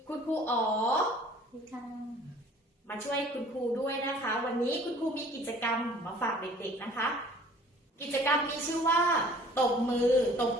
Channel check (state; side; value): normal; both; correlation 0.51